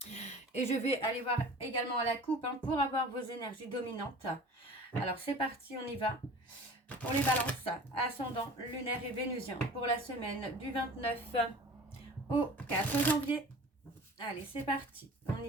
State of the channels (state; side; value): normal; both; correlation 0.42